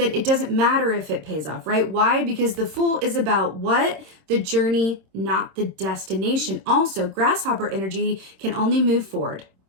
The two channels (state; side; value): late; left; 26 ms